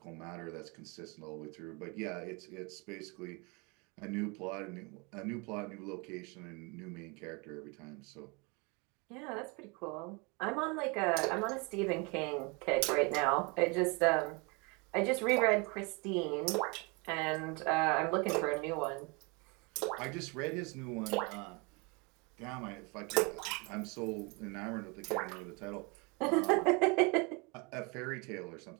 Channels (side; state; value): left; quieter; 29.9 dB